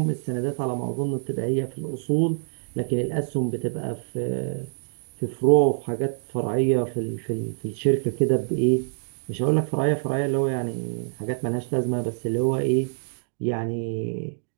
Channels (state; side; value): silent; left; digital silence